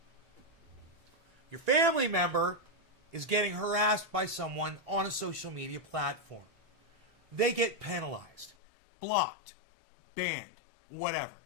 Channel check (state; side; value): drops out; right; at 8.6 s